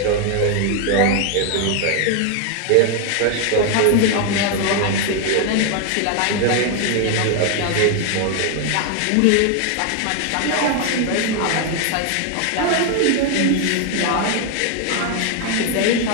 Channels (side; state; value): both; different; correlation 0.01